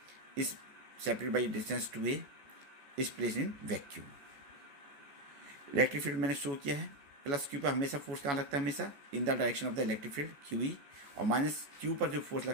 is separated by distance two A is place in vacuum. Electric field मैंने show किया है, plus Q पर हमेशा फोर्स कहाँ लगता है, हमेशा in the direction of the electric field Q E, और माइनस क्यू पर जो फोर्स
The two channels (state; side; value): late; left; 14 ms